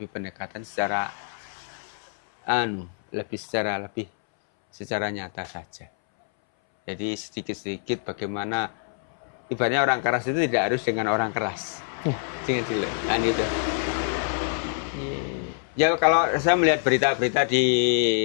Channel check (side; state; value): right; silent; 61 dB below the other